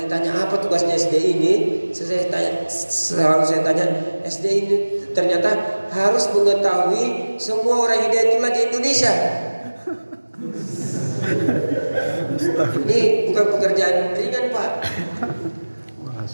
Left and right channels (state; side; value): inverted; both; correlation -1.00